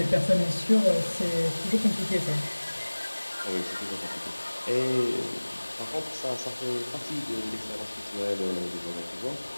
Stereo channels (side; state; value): both; inverted; correlation -1.00